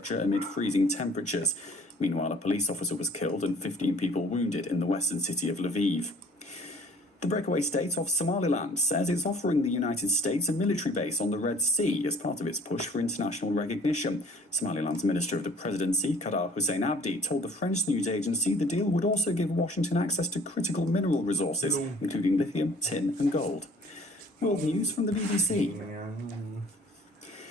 amid freezing temperatures. Meanwhile, a police officer was killed and 15 people wounded in the western city of Lviv. The breakaway state of Somaliland says it's offering the United States a military base on the Red Sea as part of its push for international recognition. Somaliland's Minister of the Presidency, Kadar Hussein Abdi, told the French news agency the deal would also give Washington access to critical mineral resources, including lithium, tin and gold. World news from the BBC.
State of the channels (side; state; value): both; normal; correlation 0.54